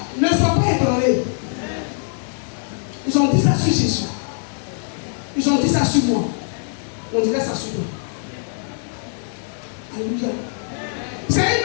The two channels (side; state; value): right; silent; 64 dB below the other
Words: Ne sois pas ébranlé. Ils ont dit ça sur Jésus. Ils ont dit ça sur moi. On dirait ça sur toi. Alléluia. C'est une